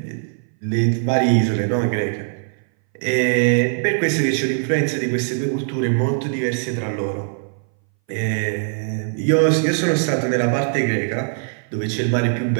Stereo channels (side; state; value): left; silent; 61 dB below the other